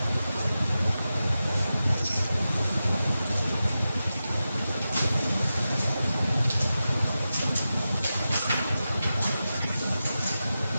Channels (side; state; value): both; inverted; correlation -0.92